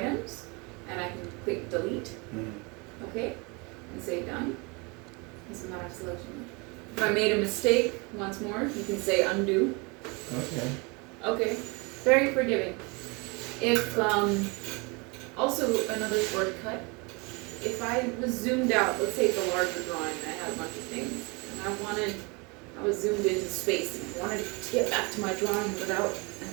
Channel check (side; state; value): left; quieter; 29.1 dB